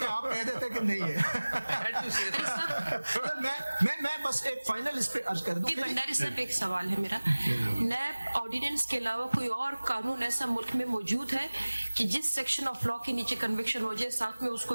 है, आप कह देते कि नहीं है. Had to say that. मैं बस एक फाइनल इस पे अर्ज कर दूं. भंडारी साहब, एक सवाल है मेरा. नैब ऑर्डिनेंस के अलावा कोई और कानून ऐसा मुल्क में मौजूद है कि जिस सेक्शन ऑफ लॉ के नीचे कन्विक्शन हो जाए, साथ में उसको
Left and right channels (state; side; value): inverted; both; correlation -1.00